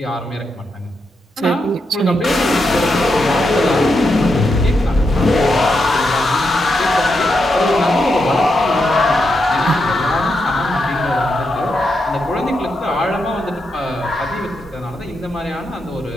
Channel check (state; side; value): normal; both; correlation 0.84